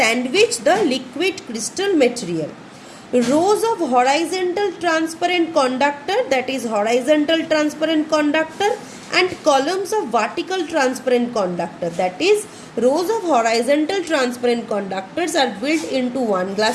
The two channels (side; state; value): both; identical; correlation 1.00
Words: the liquid crystal material. Rows of horizontal transparent conductor, that is horizontal transparent conductor, and columns of vertical transparent conductor, that is rows of horizontal transparent conductors are built into one